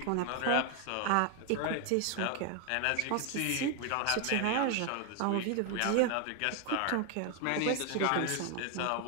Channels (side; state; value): both; different; correlation 0.01